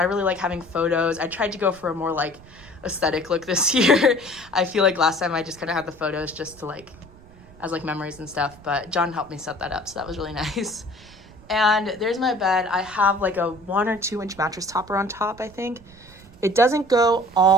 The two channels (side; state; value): right; noise; rumble, 23 dB below the sound